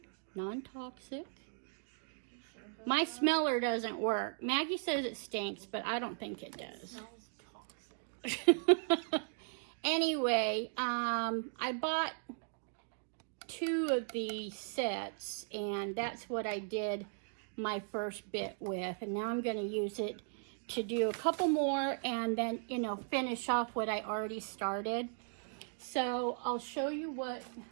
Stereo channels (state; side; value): silent; left; digital silence